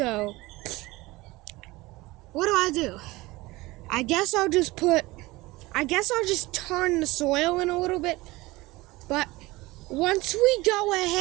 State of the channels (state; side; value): quieter; left; 20.6 dB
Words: what do? I guess I'll just turn the soil in a little bit. But once we go